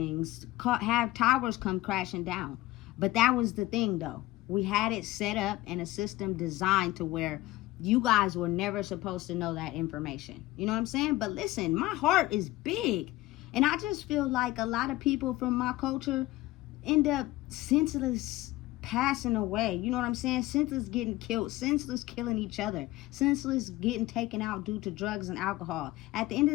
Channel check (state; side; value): quieter; right; 18.0 dB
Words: Have towers come crashing down. But that was the thing, though. We had it set up in a system designed to where you guys were never supposed to know that information. You know what I'm saying? But listen, my heart is big. And I just feel like a lot of people from my culture end up senseless passing away. You know what I'm saying? Senseless getting killed. Senseless killing each other. Senseless getting taken out due to drugs and alcohol. At the end